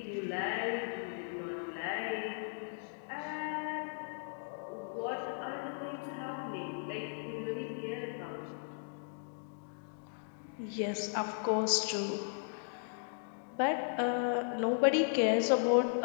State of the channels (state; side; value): silent; right; digital silence